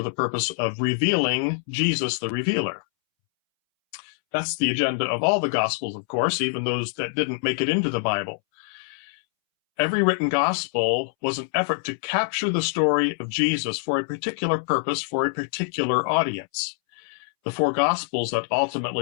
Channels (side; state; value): right; silent; 62 dB below the other